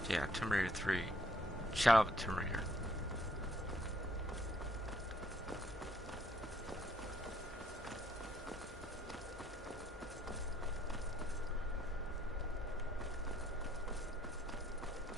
Yeah, Tomb Raider 3. Shadow of the Tomb Raider.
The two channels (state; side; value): normal; both; correlation 0.67